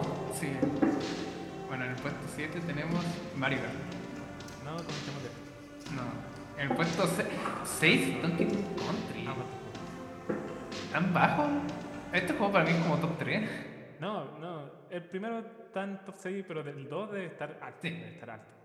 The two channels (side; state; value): both; identical; correlation 1.00